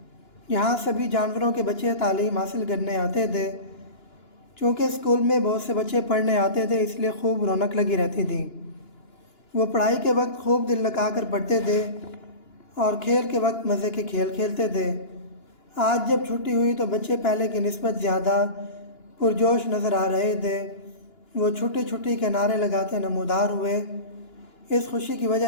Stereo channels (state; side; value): late; right; 2.9 ms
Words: یہاں سبھی جانوروں کے بچے تعلیم حاصل کرنے آتے تھے۔ چونکہ اسکول میں بہت سے بچے پڑھنے آتے تھے، اس لیے خوب رونق لگی رہتی تھی۔ وہ پڑھائی کے وقت خوب دل لگا کر پڑھتے تھے اور کھیل کے وقت مزے کے کھیل کھیلتے تھے۔ آج جب چھٹی ہوئی تو بچے پہلے کی نسبت زیادہ پرجوش نظر آ رہے تھے۔ وہ چھٹی چھٹی کے نعرے لگاتے نمودار ہوئے۔ اس خوشی کی وجہ